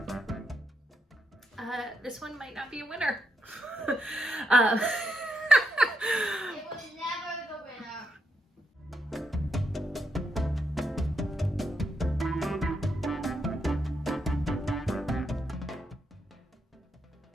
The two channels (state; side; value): normal; both; correlation 0.81